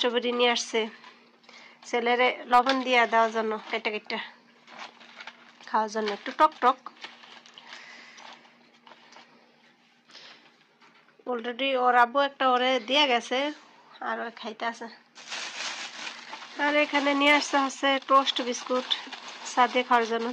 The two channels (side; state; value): both; identical; correlation 1.00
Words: নিয়ে আসছে ছেলেরে লবণ দিয়ে দেওয়ার জন্য, কেটে কেটে খাওয়ার জন্য, একটু টক টক। অলরেডি ওর আব্বু একটা ওরে দিয়ে গেছে, আর ও খাইতে আছে। আর এখানে নিয়ে আসতে হচ্ছে টোস্ট বিস্কুট চা দিয়ে খাওয়ার জন্য,